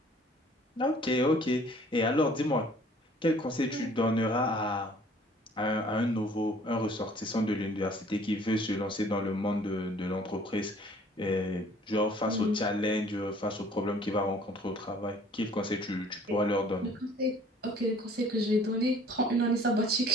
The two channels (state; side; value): normal; both; correlation 0.54